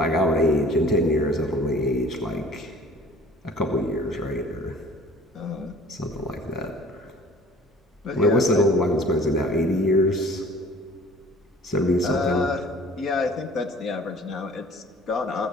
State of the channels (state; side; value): normal; both; correlation 0.49